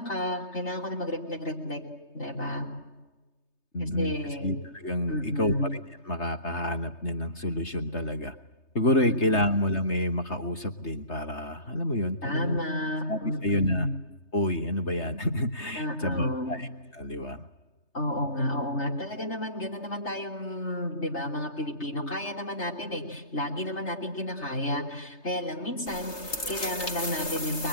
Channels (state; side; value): late; right; 3.3 ms